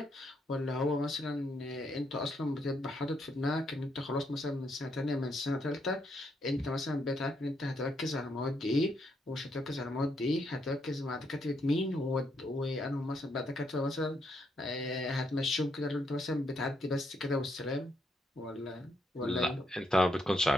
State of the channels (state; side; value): normal; both; correlation 0.76